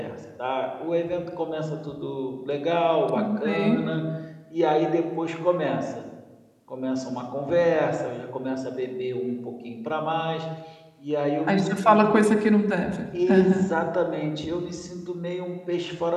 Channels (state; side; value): identical; both; correlation 1.00